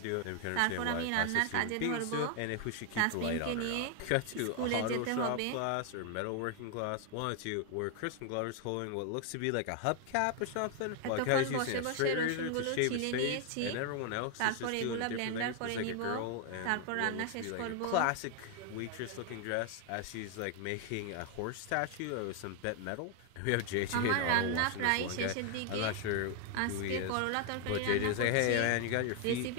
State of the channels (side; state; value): both; different; correlation 0.00